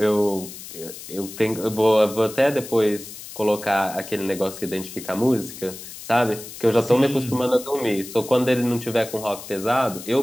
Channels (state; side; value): noise; left; hiss, 13 dB below the sound